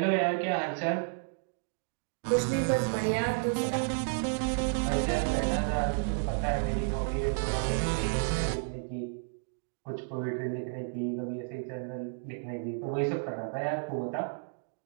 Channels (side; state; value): left; silent; digital silence